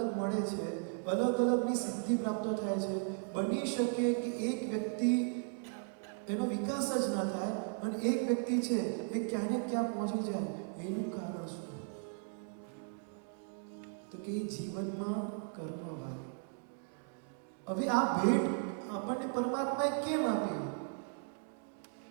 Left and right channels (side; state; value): left; silent; 53 dB below the other